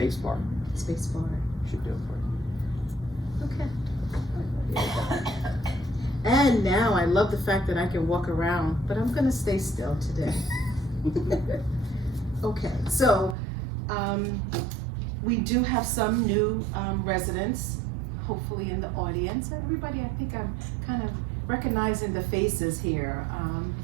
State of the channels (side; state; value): left; drops out; at 13.4 s